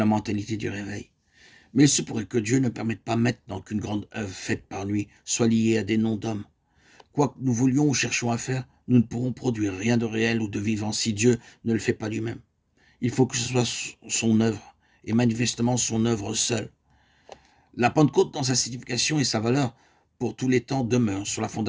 mentalité du réveil. Mais il se pourrait que Dieu ne permette pas maintenant qu'une grande œuvre faite par lui soit liée à des noms d'hommes. Quoi que nous voulions ou cherchions à faire, nous ne pourrons produire rien de réel ou de vivant si Dieu ne le fait pas lui-même. Il faut que ce soit son œuvre, et manifestement son œuvre seule. La Pentecôte, dans sa signification et sa valeur, pour tous les temps, demeure sur la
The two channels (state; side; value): identical; both; correlation 1.00